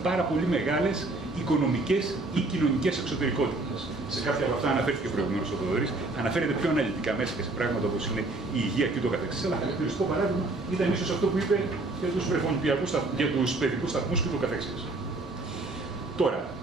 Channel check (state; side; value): quieter; left; 3.0 dB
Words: πάρα πολύ μεγάλες οικονομικές ή κοινωνικές εξωτερικότητες. Σε κάποια από αυτά αναφέρθηκε προηγουμένως ο Θοδωρής, αναφέρεται πιο αναλυτικά μέσα και σε πράγματα όπως είναι η υγεία και το καθεξής. Αλλά χαρακτηριστικό παράδειγμα ήταν ίσως αυτό που είπε για τους βρεφονιπιακούς, για τους παιδικούς σταθμούς και το καθεξής. Τώρα,